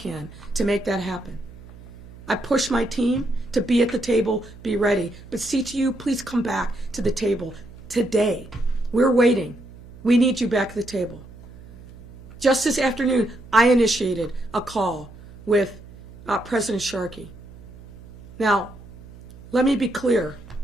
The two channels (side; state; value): right; noise; hum, 19 dB below the sound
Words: to make that happen. I push my team to be at the table, be ready. But CTU, please come back to the table today. We're waiting. We need you back at the table. Just this afternoon, I initiated a call with President Sharkey. Now, let me be clear.